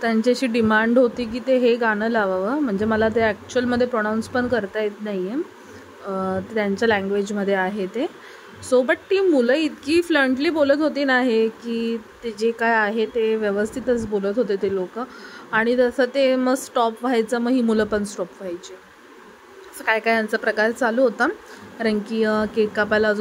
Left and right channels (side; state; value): both; identical; correlation 1.00